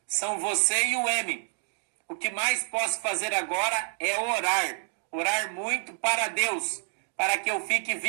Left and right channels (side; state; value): left; silent; 59 dB below the other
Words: são você e o M. O que mais posso fazer agora é orar. Orar muito para Deus, para que eu fique